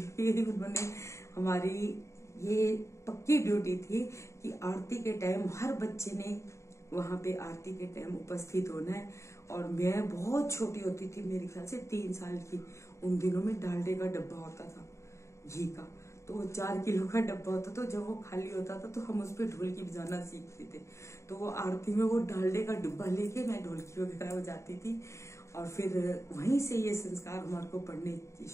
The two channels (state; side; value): late; right; 0.14 ms